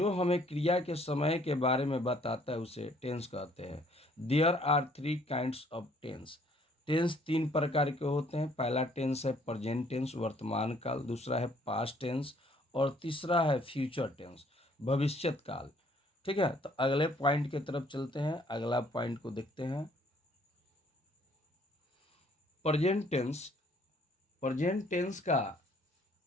हमें क्रिया के समय के बारे में बताता है उसे टेंस कहते हैं। There are three kinds of tense. Tense तीन प्रकार के होते हैं। पहला टेंस है प्रेजेंट टेंस, वर्तमान काल। दूसरा है पास्ट टेंस और तीसरा है फ्यूचर टेंस, भविष्यत काल। ठीक है, तो अगले पॉइंट की तरफ चलते हैं। अगला पॉइंट को देखते हैं। Present tense. प्रेजेंट टेंस का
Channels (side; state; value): both; normal; correlation 0.62